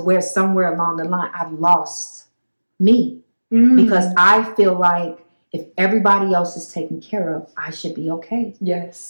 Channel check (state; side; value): inverted; both; correlation -1.00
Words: somewhere along the line, I've lost me because I feel like if everybody else is taken care of, I should be okay.